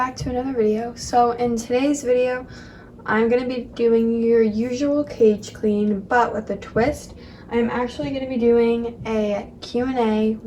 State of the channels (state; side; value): identical; both; correlation 1.00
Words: to another video. So in today's video, I'm going to be doing your usual cage clean, but with a twist. I'm actually going to be doing a Q&A